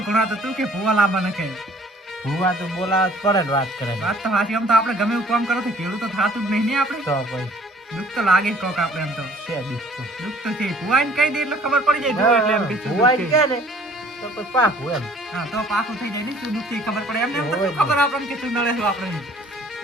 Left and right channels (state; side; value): normal; both; correlation 0.55